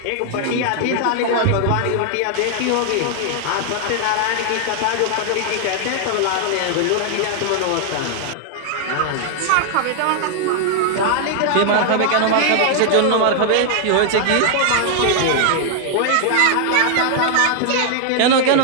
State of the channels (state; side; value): different; both; correlation 0.00